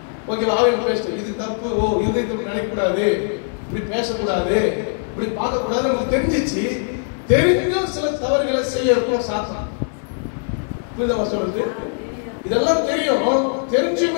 ஓகே, ஆவியில் பேசுறோம், இது தப்பு, ஓ இதயத்தில் நினைக்கக்கூடாது, இப்படி பேசக்கூடாது, இப்படி பார்க்கக்கூடாது, நமக்கு தெரிஞ்சிச்சு. தெரிஞ்சும் சில தவறுகளை செய்ய இருக்கும் சாத்தான். புரியுதா சொல்றது? இதெல்லாம் தெரியும்,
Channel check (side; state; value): right; silent; 65 dB below the other